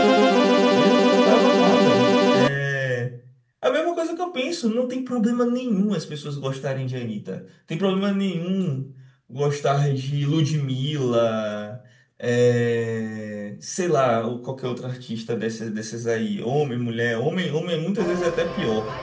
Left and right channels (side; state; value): both; identical; correlation 1.00